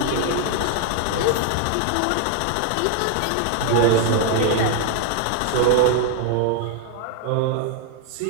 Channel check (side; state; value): both; different; correlation 0.00